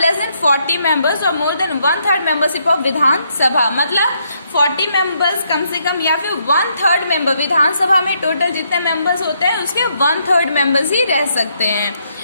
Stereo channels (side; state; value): both; inverted; correlation -0.75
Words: than 40 members और मोर देन 1/3 मेंबरशिप ऑफ विधानसभा. मतलब 40 members कम से कम या फिर 1/3 मेंबर. विधानसभा में टोटल जितने मेंबर्स होते हैं उसके 1/3 मेंबर्स ही रह सकते हैं.